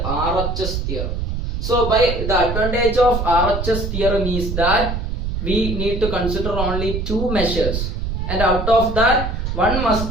theorem. So by the advantage of RHS theorem is that we need to consider only two measures, and out of that one must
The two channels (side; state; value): right; noise; rumble, 3 dB below the sound